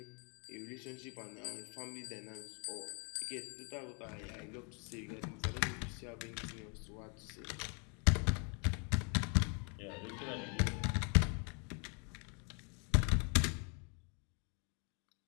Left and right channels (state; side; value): quieter; right; 36.6 dB